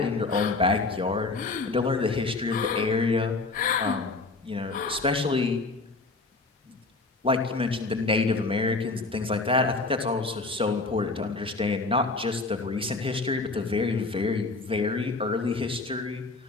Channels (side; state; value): right; quieter; 3.6 dB